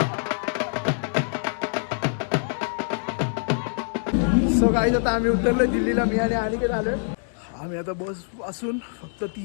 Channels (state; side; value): silent; right; 62 dB below the other